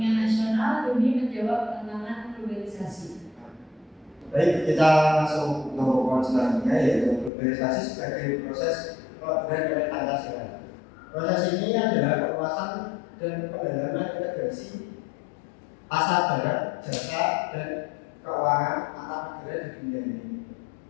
nasional demi menjawab tantangan globalisasi. Baik, kita langsung ke poin selanjutnya, yaitu globalisasi sebagai proses pelaburan oleh Pancasila. Proses ini adalah perluasan dan pendalaman integrasi pasar barang, jasa, dan keuangan antar negara di dunia ini.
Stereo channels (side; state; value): right; drops out; at 7.3 s